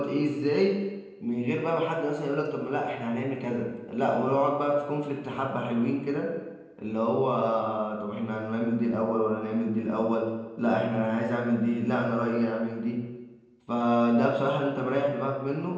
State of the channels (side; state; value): both; identical; correlation 1.00